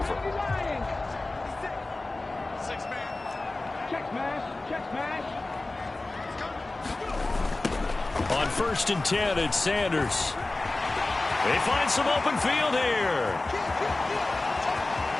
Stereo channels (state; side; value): quieter; right; 3.0 dB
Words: On 1st and 10, it's Sanders. They find some open field here.